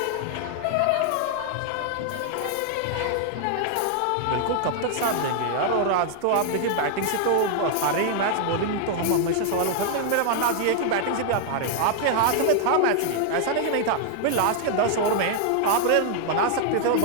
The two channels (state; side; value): different; both; correlation 0.00